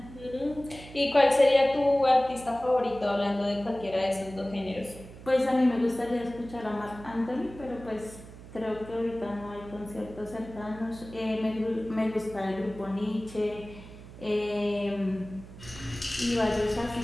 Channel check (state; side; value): noise; right; hum, 16 dB below the sound